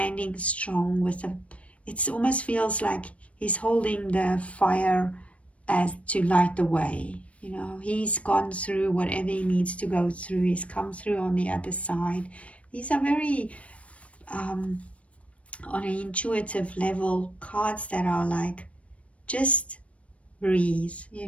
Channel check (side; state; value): right; late; 0.064 ms